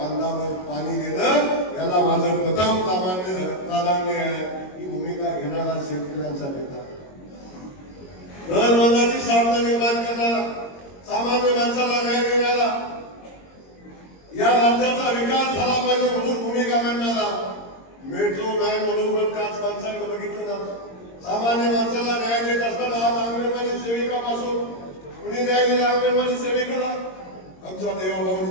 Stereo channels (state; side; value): late; right; 22 ms